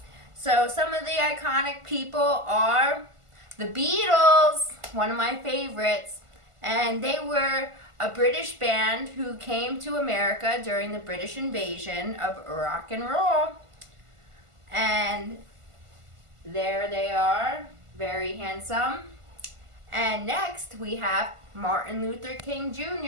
So some of the iconic people are the Beatles, one of my favorites, and they were a British band who came to America during the British invasion of rock and roll. And there they are, very handsome. And next we have Martin Luther King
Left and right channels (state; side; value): late; left; 1.5 ms